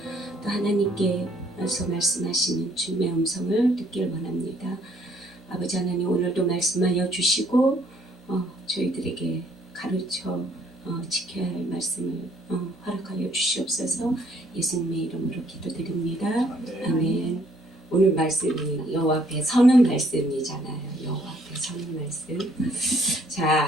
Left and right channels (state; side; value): normal; both; correlation 0.65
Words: 또 하나님께서 말씀하시는 주님의 음성을 듣길 원합니다. 아버지 하나님, 오늘도 말씀하여 주시고 저희들에게 가르쳐 지켜야 할 말씀을 허락하여 주시옵소서. 예수님의 이름으로 기도드립니다. 아멘. 오늘 말씀이 여호와 앞에 서는 말씀이잖아요. 여호와 앞에 서는 말씀.